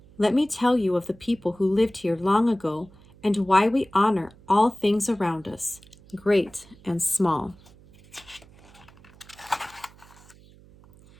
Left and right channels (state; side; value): noise; right; hum, 25 dB below the sound